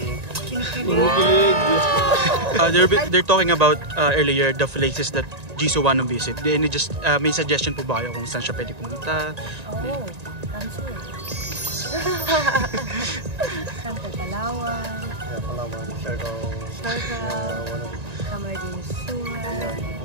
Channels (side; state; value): left; late; 1.9 ms